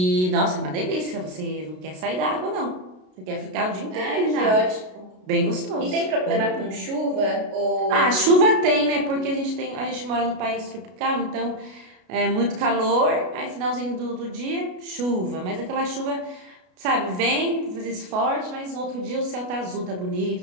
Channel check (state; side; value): late; left; 33 ms